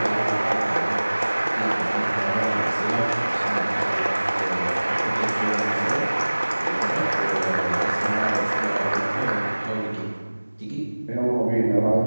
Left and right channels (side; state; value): both; inverted; correlation -1.00